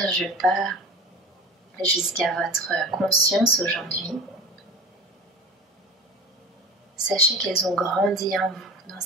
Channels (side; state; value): both; normal; correlation 0.35